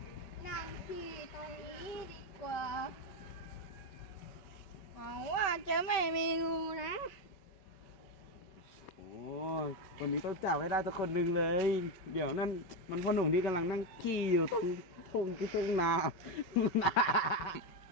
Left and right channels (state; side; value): late; right; 5.2 ms